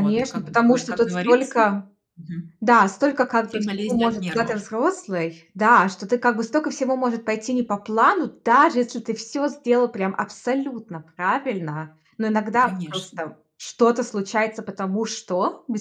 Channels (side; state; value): both; identical; correlation 1.00